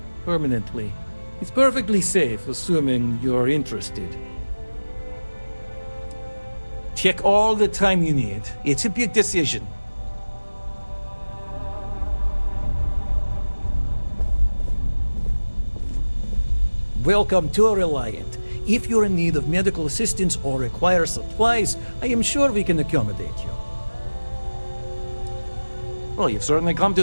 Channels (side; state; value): both; inverted; correlation -1.00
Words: permanently. It's perfectly safe, assuming you're interested. Take all the time you need. It's a big decision. Welcome to Reliant. If you're in need of medical assistance or require supplies, I am sure we can accommodate you. Well, you've certainly come to